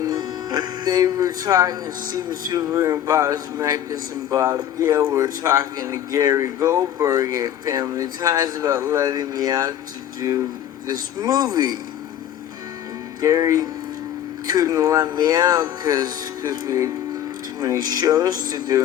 they were talking, Steven Spielberg and Bob Zemeckis and Bob Gale were talking to Gary Goldberg at Family Ties about letting me out to do this movie. And Gary couldn't let me out because we had too many shows to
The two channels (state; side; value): quieter; right; 10.8 dB